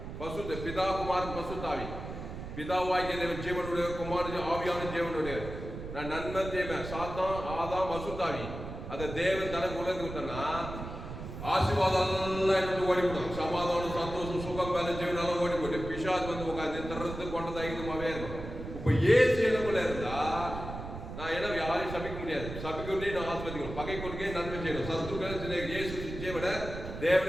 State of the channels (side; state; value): right; noise; rumble, 9 dB below the sound